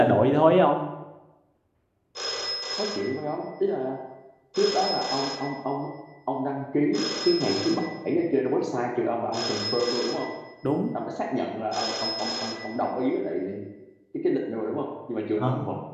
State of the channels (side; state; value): both; identical; correlation 1.00